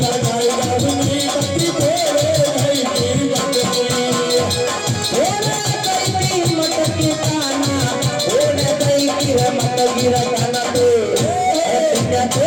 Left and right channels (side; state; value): both; identical; correlation 1.00